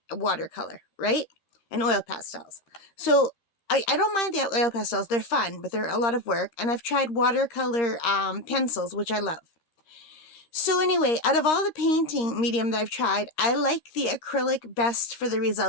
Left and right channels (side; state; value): right; late; 13 ms